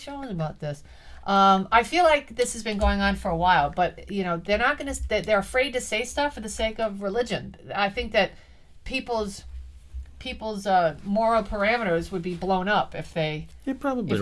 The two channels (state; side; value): identical; both; correlation 1.00